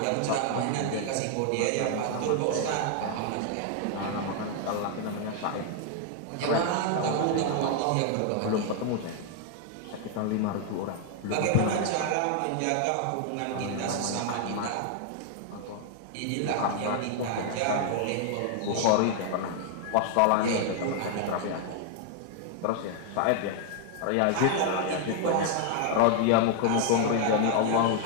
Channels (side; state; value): both; different; correlation 0.00